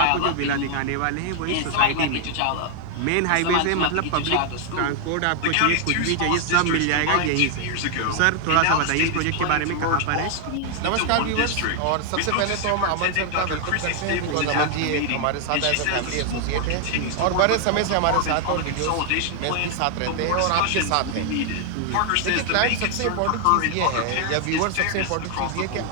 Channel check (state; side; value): different; both; correlation 0.00